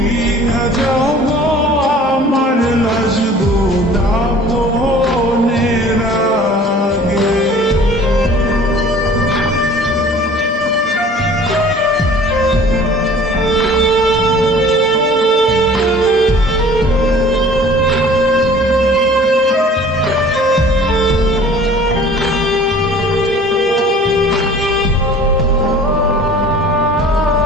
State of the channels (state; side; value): normal; both; correlation 0.48